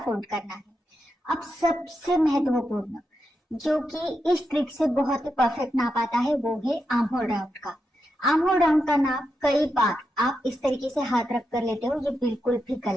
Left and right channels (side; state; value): both; normal; correlation 0.86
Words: फोल्ड करना है। अब सबसे महत्वपूर्ण जो कि इस ट्रिक से बहुत ही परफेक्ट नाप आता है वो है आर्म होल राउंड का। आर्म होल राउंड का नाप कई बार आप इस तरीके से हाथ रख कर लेते हो, ये बिल्कुल भी